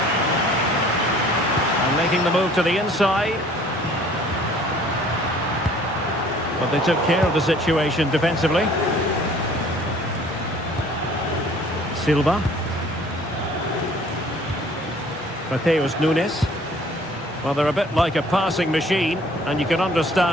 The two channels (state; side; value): normal; both; correlation 0.54